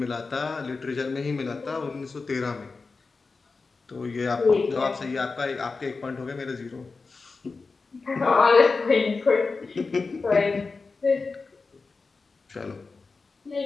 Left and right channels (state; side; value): quieter; right; 4.2 dB